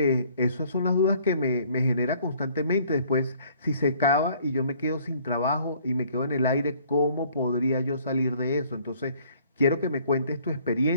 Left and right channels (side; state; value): both; inverted; correlation -0.59